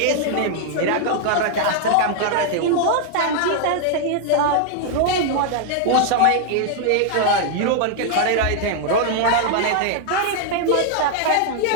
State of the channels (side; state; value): both; different; correlation 0.00